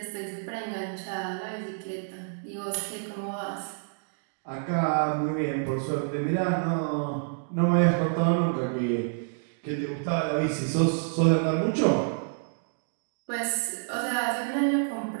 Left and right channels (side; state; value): left; silent; digital silence